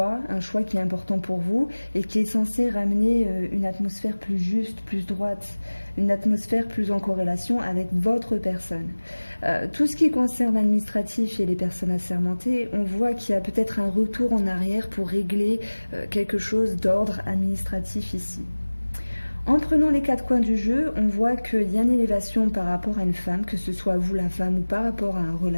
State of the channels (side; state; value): both; inverted; correlation -1.00